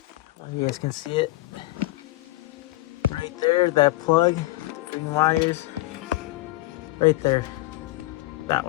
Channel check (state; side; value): quieter; right; 18.4 dB